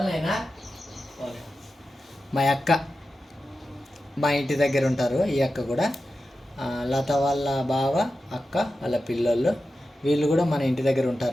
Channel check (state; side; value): normal; both; correlation 0.92